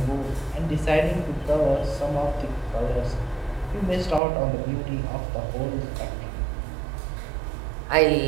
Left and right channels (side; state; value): left; drops out; at 4.2 s